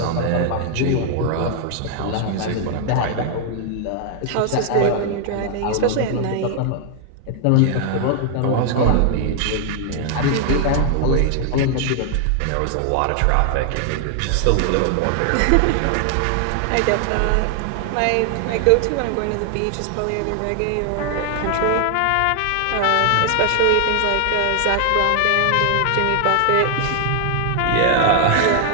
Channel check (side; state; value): both; different; correlation 0.00